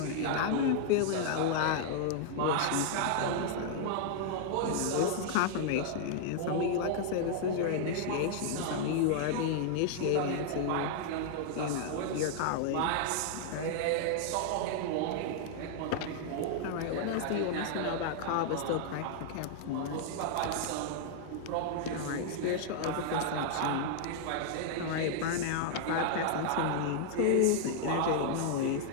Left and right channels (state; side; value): different; both; correlation -0.01